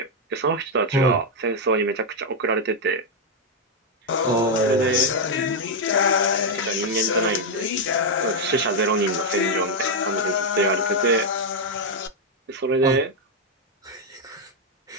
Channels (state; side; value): normal; both; correlation 0.01